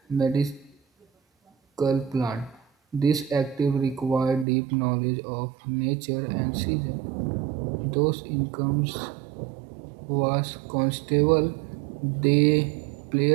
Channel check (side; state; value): left; drops out; at 4.5 s